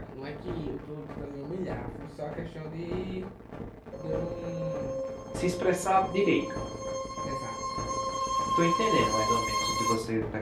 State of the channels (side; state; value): both; identical; correlation 1.00